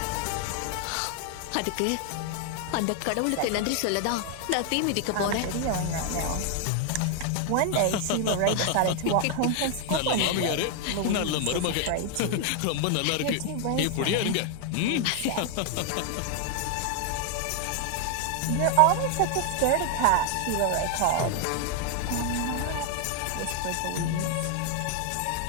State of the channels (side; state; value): both; different; correlation 0.00